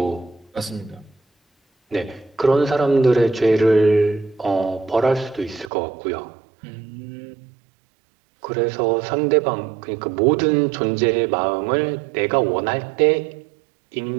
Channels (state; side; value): drops out; left; at 5.7 s